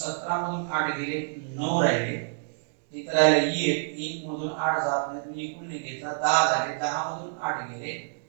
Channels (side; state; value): left; silent; digital silence